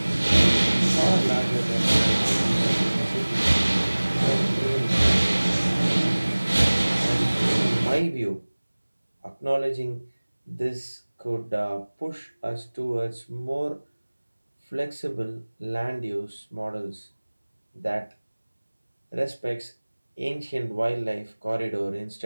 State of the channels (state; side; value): inverted; both; correlation -1.00